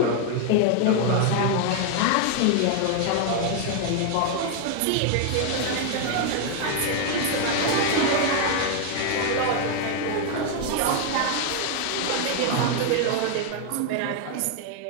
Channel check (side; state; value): both; different; correlation 0.00